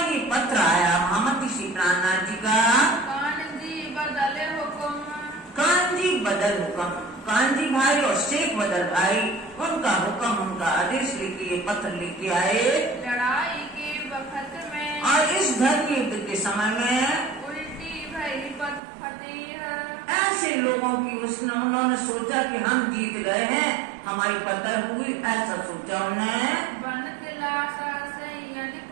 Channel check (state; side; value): drops out; left; at 18.8 s